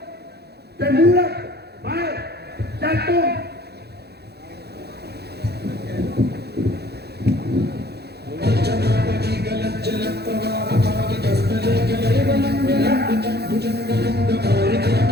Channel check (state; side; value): late; left; 0.47 ms